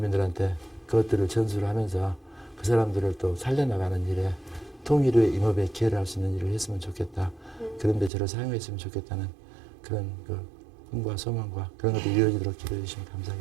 그것들을 전수를 하면서 그 사람들을 또 살려나가는 일에 통일 후에 임업에 기여를 할 수 있는 일을 했으면 좋겠다. 그런데 저를 사용했으면 좋겠다는 그런 그 꿈과 소망과 그런 것들이 이루어지도록 기도해 주시면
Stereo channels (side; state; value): left; drops out; at 8.1 s